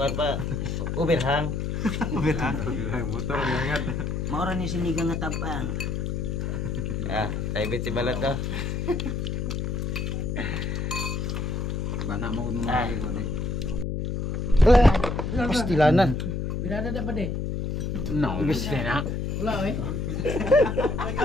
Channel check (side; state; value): left; noise; hum, 2 dB below the sound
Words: pa. Uber hang. Motor nangat. Maura ni sinigang nga tabang. Ah, tayo si balat ka. Bana mo nung lagi ko di. Pastilanan. Birada da ba de? No, bisa na. Wala eh.